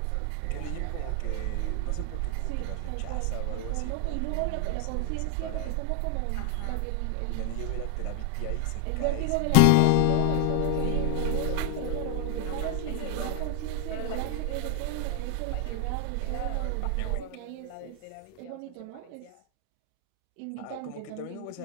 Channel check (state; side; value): different; both; correlation 0.00